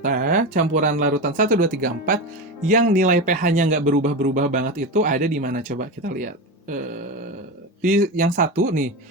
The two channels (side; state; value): both; normal; correlation 0.20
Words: campuran larutan 1, 2, 3, 4 yang nilai pH-nya nggak berubah-berubah banget itu ada di mana? Coba kita lihat. Di yang satu nih,